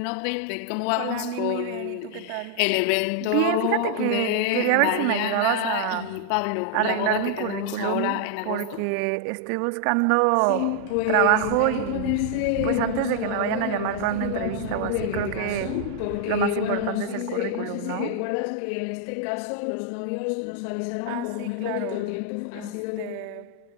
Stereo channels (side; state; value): both; different; correlation -0.01